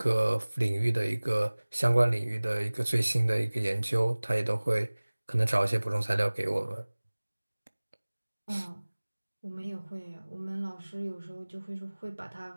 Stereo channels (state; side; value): inverted; both; correlation -1.00